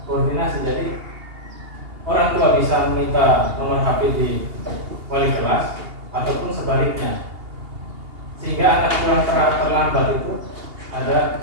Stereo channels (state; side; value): late; left; 2.8 ms